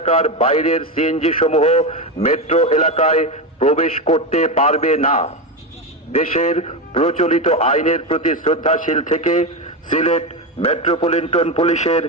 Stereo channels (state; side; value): normal; both; correlation 0.15